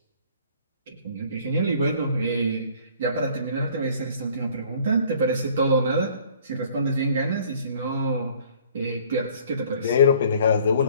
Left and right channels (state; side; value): inverted; both; correlation -0.55